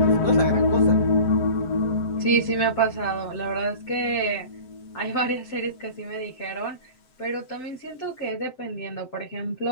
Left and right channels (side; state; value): right; late; 7.7 ms